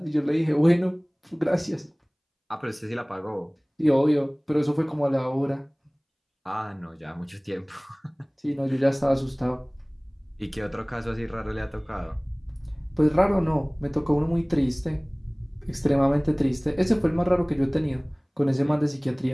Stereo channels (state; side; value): identical; both; correlation 1.00